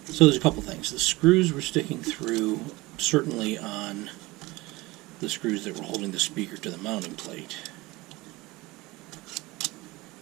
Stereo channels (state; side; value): quieter; left; 21.3 dB